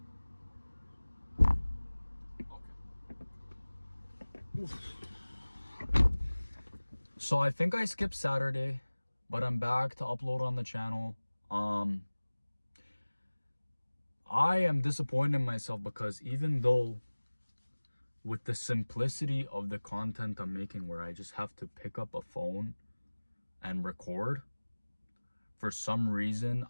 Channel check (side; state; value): both; inverted; correlation -1.00